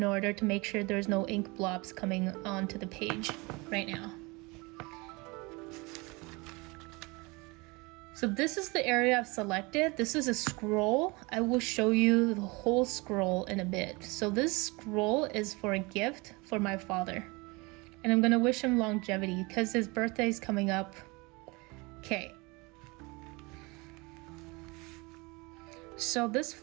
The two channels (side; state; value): left; quieter; 26.0 dB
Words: order to make sure there's no ink blobs coming onto the page right now. So this is the area I've selected. This is a scroll. I will show you the whole scroll in a bit. So this scroll is for a gift for my father. And I'm gonna wish him longevity because his birthday is coming up. Okay. So this